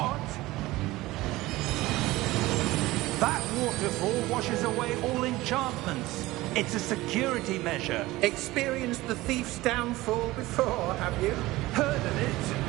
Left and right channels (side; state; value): left; quieter; 18.7 dB